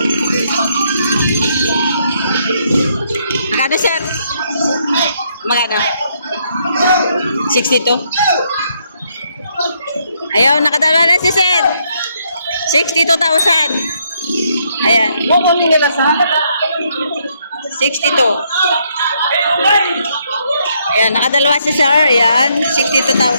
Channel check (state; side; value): inverted; both; correlation -0.73